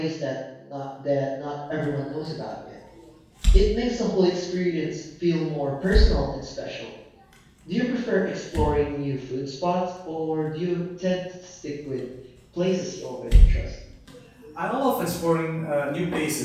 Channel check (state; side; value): identical; both; correlation 1.00